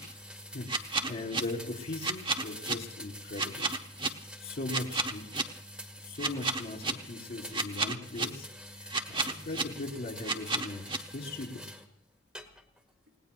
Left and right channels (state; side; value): normal; both; correlation 0.08